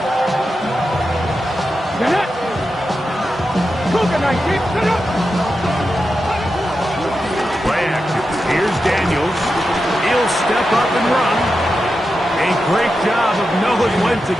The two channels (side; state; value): both; normal; correlation 0.89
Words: Play action. Here's Daniels. He'll step up and run. A great job of knowing when to